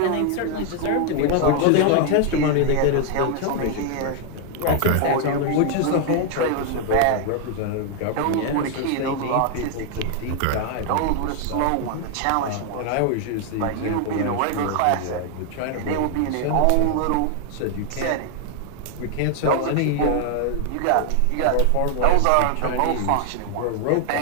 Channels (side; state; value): both; different; correlation 0.00